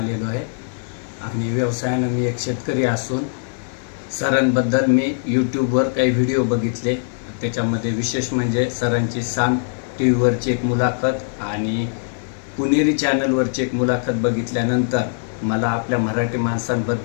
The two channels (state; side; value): silent; right; digital silence